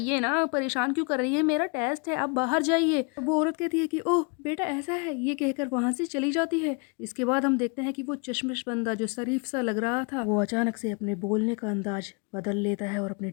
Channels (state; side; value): quieter; right; 33.8 dB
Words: ना, परेशान क्यों कर रही है, मेरा टेस्ट है, आप बाहर जाइए। तो वो औरत कहती है कि ओह बेटा ऐसा है, ये कहकर वहां से चली जाती है। इसके बाद हम देखते हैं कि वो चश्मिश बंदा जो शरीफ सा लग रहा था वो अचानक से अपने बोलने का अंदाज बदल लेता है और अपने